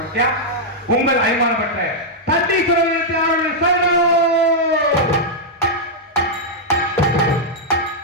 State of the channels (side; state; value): both; normal; correlation -0.06